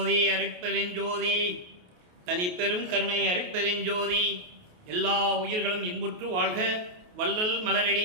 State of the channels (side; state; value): left; late; 28 ms